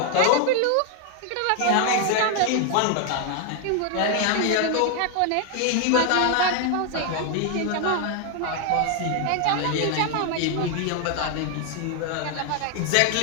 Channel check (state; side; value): different; both; correlation 0.00